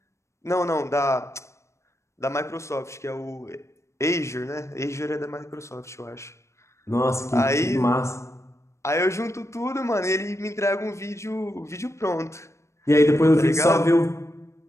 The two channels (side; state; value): right; late; 0.14 ms